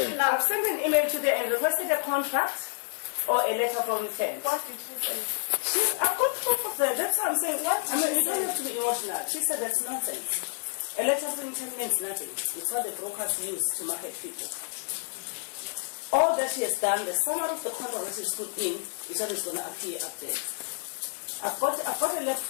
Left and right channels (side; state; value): right; silent; 59 dB below the other